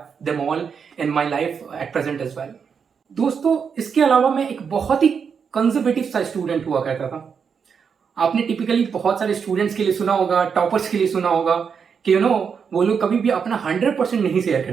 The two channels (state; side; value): quieter; left; 6.5 dB